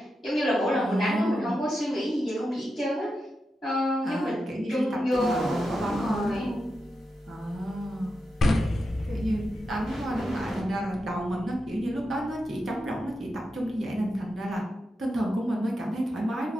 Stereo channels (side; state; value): both; normal; correlation 0.88